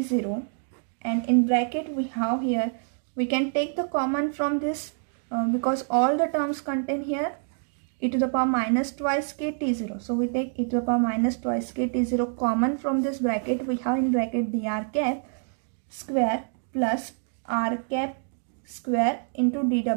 and in bracket we have here, we can take the common from this because all the terms contain here e to the power minus twice k t0. So we take e to the power minus twice k t0 common from this bracket. We have in bracket dr cap square plus r cap square into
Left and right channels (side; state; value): left; silent; 58 dB below the other